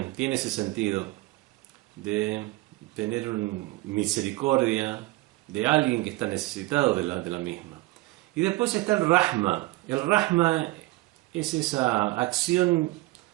tiene ese sentido de tener misericordia de alguien que está necesitado de la misma. Y después está el Rahma. El Rahma es esa acción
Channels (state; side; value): quieter; left; 20.1 dB